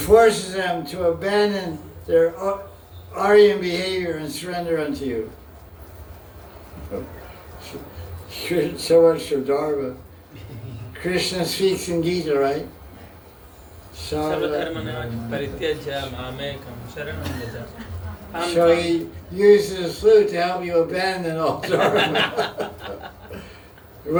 them to abandon their Aryan behavior and surrender unto you. So much for Dharma. Krishna speaks in Gita, right? So he uses his flute to help you abandon all Dharma.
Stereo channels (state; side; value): identical; both; correlation 1.00